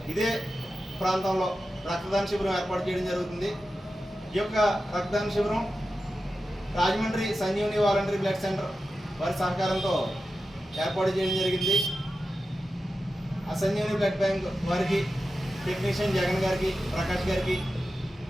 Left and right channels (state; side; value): normal; both; correlation 0.92